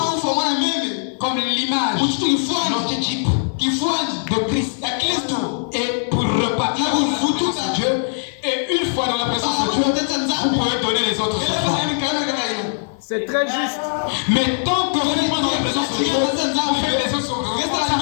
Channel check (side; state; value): right; silent; digital silence